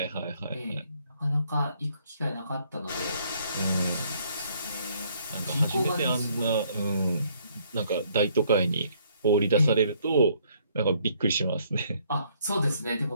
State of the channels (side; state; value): both; inverted; correlation -0.66